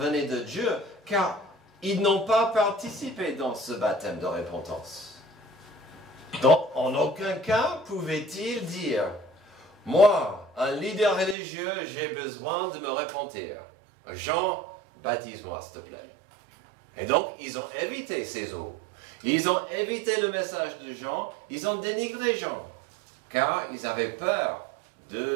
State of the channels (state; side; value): drops out; left; at 11.4 s